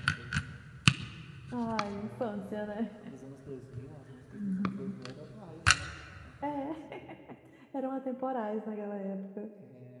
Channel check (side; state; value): both; identical; correlation 1.00